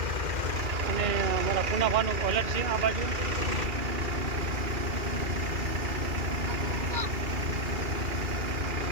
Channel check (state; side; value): late; left; 2.4 ms